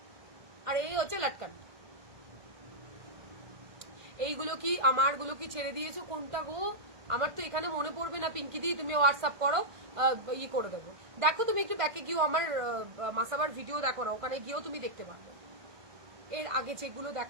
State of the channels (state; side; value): late; left; 1.5 ms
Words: আর এই হচ্ছে লাটকান। এইগুলো কি আমার গুলো কি ছেড়ে দিয়েছো কোনটা গো? আমার তো এখানে মনে পড়বে না। পিঙ্কি দি তুমি হোয়াটসঅ্যাপ করো, ই করে দেবো। দেখো তুমি একটু ব্যাকে গিয়েও আমার মাসাবার ভিডিও দেখো না, ওখানে গিয়েও তুমি দেখতে পারবে। এর আগে যেগুলো